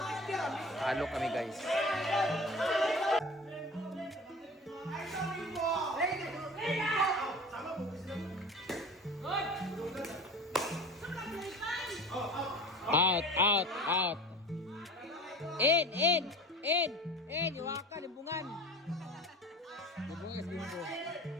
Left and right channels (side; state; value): both; normal; correlation 0.37